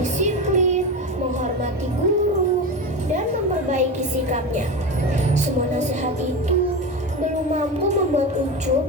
disiplin, menghormati guru, dan memperbaiki sikapnya. Semua nasihat itu belum mampu membuat Ucup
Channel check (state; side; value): normal; both; correlation 0.22